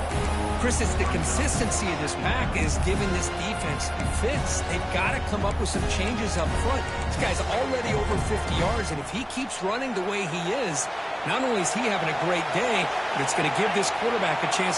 Chris, it's the consistency of this pack is giving this defense fits. They've got to come up with some changes up front. This guy's already over 50 yards, and if he keeps running the way he is, not only is he having a great day, but it's going to give this quarterback a chance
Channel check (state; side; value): identical; both; correlation 1.00